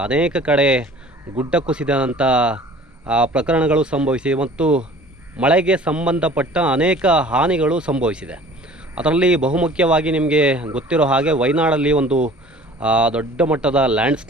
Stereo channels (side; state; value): both; normal; correlation 0.48